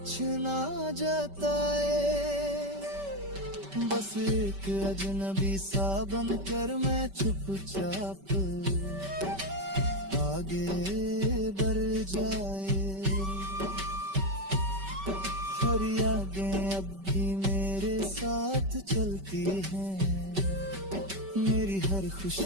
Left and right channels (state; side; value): late; left; 5.2 ms